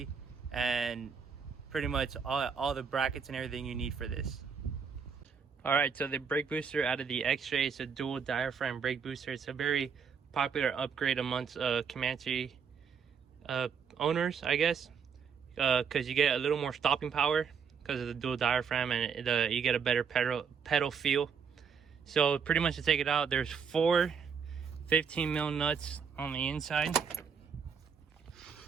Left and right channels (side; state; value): left; quieter; 6.4 dB